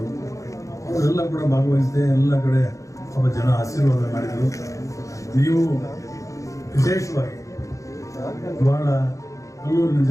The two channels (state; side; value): late; right; 0.15 ms